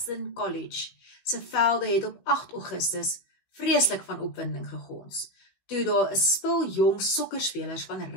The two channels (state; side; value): late; right; 16 ms